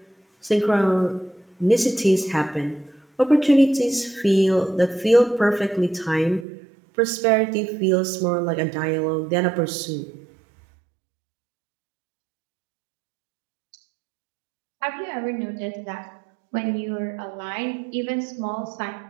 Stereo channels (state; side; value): drops out; left; at 6.5 s